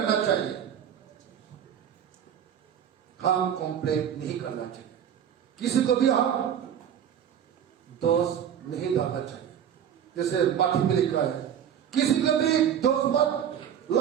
चाहिए? हम कंप्लेंट नहीं करना चाहिए, किसी को भी हम दोष नहीं डालना चाहिए। जैसे पाठी में लिखा है किसी को भी दोष मत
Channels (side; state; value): left; quieter; 9.1 dB